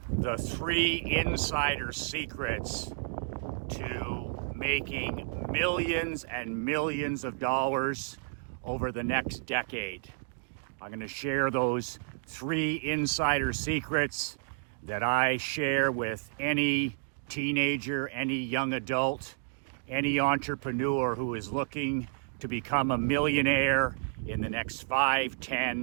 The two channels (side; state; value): left; silent; digital silence